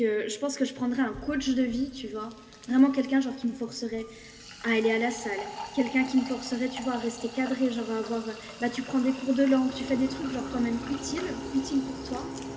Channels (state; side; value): identical; both; correlation 1.00